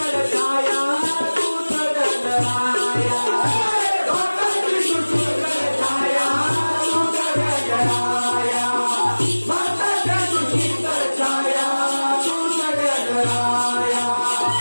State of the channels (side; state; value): both; inverted; correlation -1.00